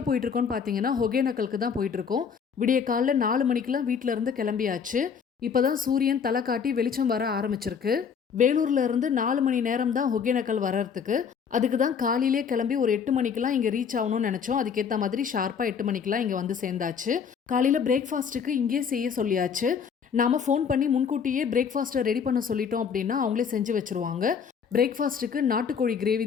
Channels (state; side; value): quieter; right; 6.7 dB